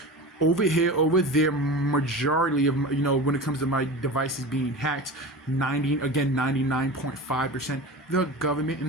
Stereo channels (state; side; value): normal; both; correlation 0.31